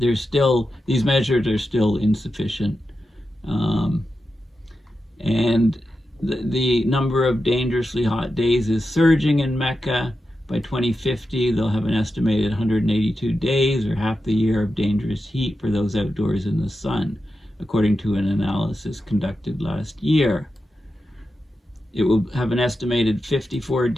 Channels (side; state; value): both; normal; correlation 0.90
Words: still, these measures are still insufficient. And the number of dangerously hot days is surging in Mecca. By 2050, they'll have an estimated 182 days, or half the year of dangerous heat for those outdoors in the sun, according to an analysis conducted last year. It will have an estimated 54